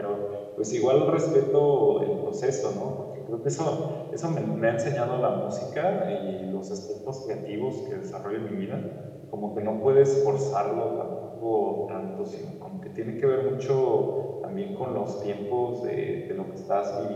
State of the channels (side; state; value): both; identical; correlation 1.00